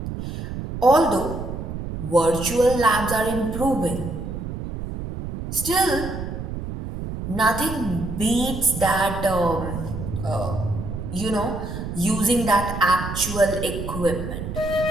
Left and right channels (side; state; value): right; noise; rumble, 6 dB below the sound